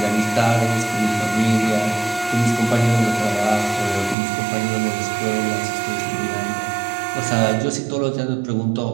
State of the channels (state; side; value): drops out; left; at 4.2 s